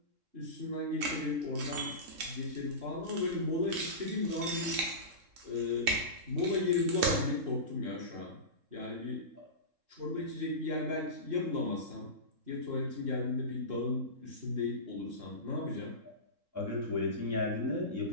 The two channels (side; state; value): left; late; 3.7 ms